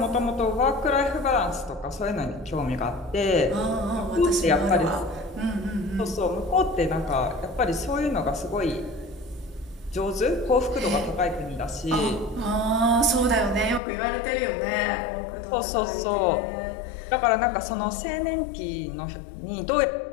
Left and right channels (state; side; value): drops out; right; at 13.8 s